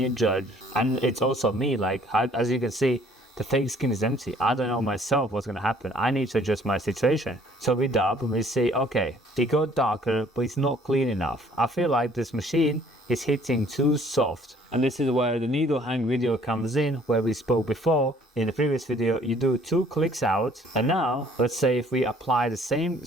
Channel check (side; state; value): both; normal; correlation 0.58